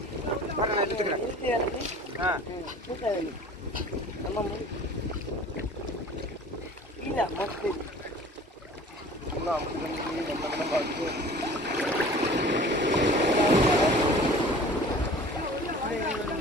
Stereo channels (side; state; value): both; normal; correlation 0.45